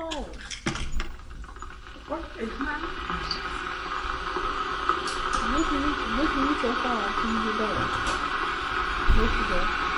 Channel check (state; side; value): identical; both; correlation 1.00